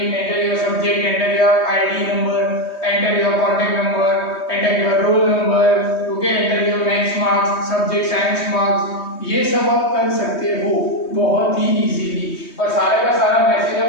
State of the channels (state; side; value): late; right; 3.2 ms